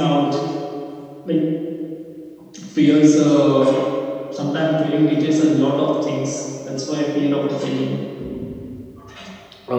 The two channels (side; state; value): both; identical; correlation 1.00